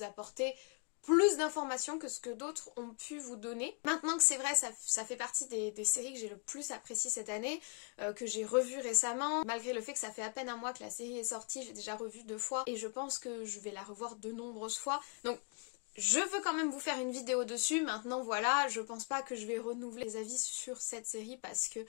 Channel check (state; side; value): quieter; right; 37.5 dB